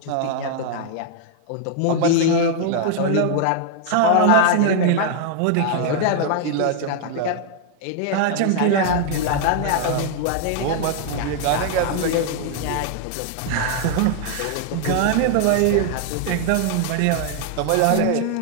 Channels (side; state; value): both; different; correlation 0.00